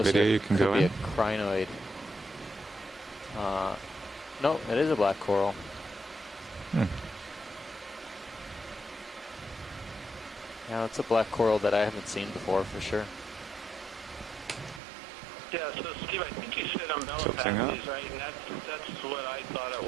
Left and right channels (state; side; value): drops out; left; at 14.8 s